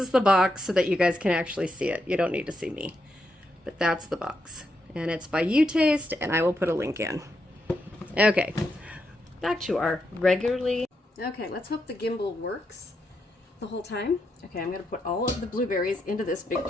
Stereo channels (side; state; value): both; normal; correlation 0.82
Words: the box so that you guys can actually see it. You don't need to see me. But that's the box. And it's by Jam.Taste, and I will put a link in. Okay, back to our regularly. Okay, let's hope the gimbal works the whole time. Okay, I'm going to put all of the blueberries into this big